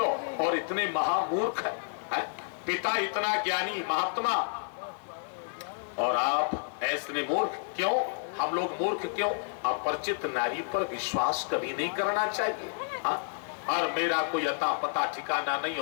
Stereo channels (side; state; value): right; silent; 58 dB below the other